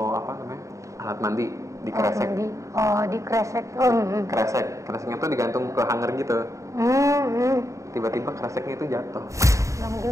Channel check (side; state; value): left; late; 0.15 ms